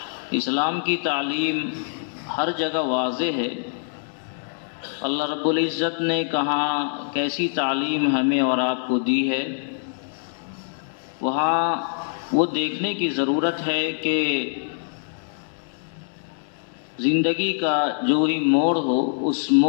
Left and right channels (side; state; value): right; silent; digital silence